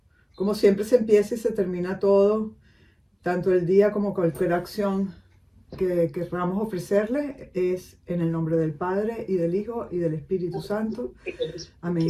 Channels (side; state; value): both; identical; correlation 1.00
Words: siempre se empieza y se termina todo, tanto el día como cualquier acción que queramos ofrecerle, es en el nombre del Padre y del Hijo y del Espíritu Santo. Amén.